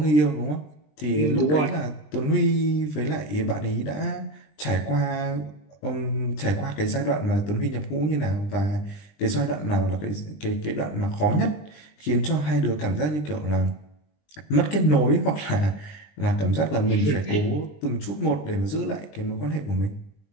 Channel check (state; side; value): late; right; 20 ms